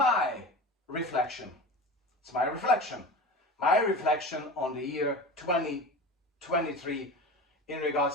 reflection. It's my reflection. My reflection on the year 2023 in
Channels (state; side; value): normal; both; correlation 0.32